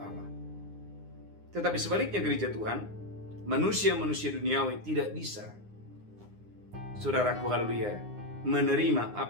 Tetapi sebaliknya gereja Tuhan, manusia-manusia duniawi tidak bisa, saudaraku, haleluya, menerima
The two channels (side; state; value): left; late; 9.7 ms